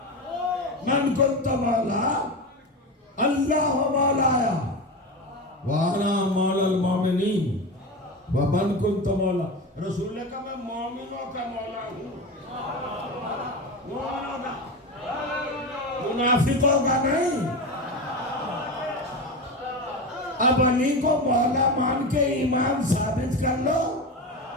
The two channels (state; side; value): normal; both; correlation 0.23